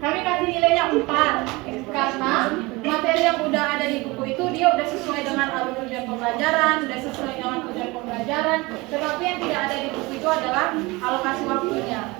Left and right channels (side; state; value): left; quieter; 23.2 dB